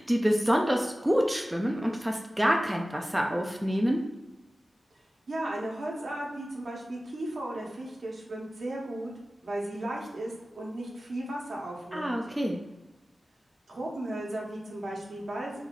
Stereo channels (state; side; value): normal; both; correlation 0.96